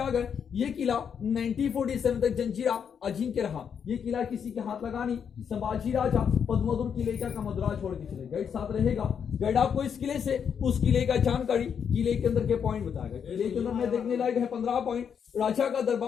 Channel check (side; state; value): right; quieter; 7.4 dB